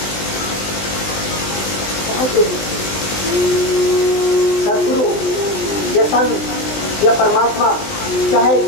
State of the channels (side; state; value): right; late; 19 ms